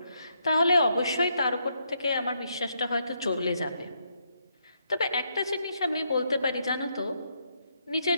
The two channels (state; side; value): inverted; both; correlation -0.77